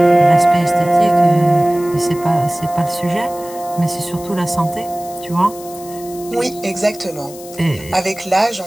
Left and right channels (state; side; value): noise; left; hiss, 17 dB below the sound